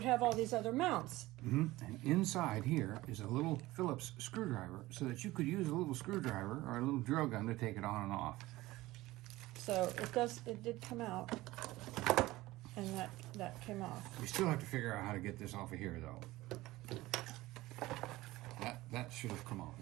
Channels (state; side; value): quieter; left; 18.3 dB